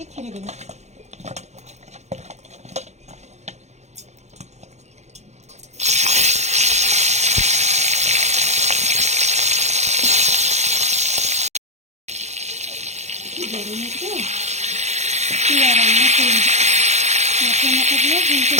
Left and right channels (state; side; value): late; left; 0.33 ms